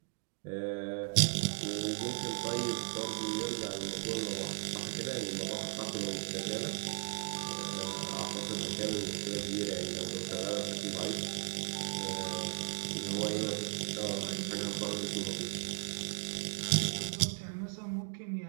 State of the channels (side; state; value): left; silent; digital silence